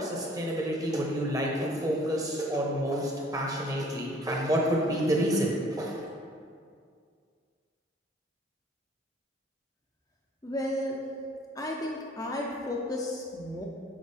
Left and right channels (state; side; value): normal; both; correlation 0.56